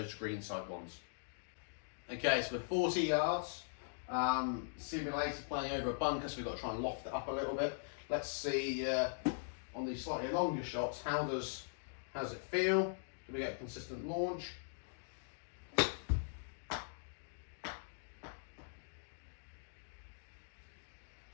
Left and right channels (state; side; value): silent; right; digital silence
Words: greenside ones. Okay, so we're 40 yards, simulator playing over a bunker, so we've got to try and loft it up a little bit. Let's see on these slightly longer shots, how does it feel? Do we get a consistent launch?